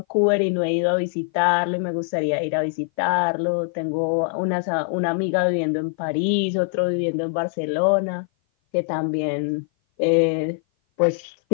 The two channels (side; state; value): right; silent; 57 dB below the other